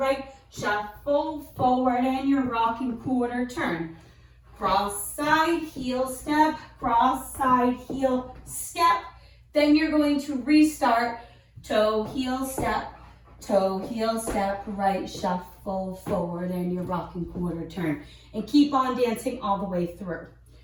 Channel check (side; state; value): both; identical; correlation 1.00